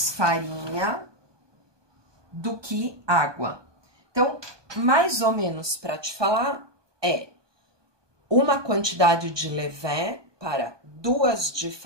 farinha do que água. Então, mais ou menos para te falar, uma quantidade de levain para 2 de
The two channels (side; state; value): left; late; 1.2 ms